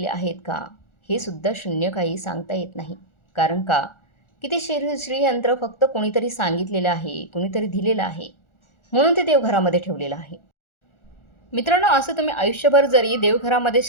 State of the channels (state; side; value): late; right; 1.4 ms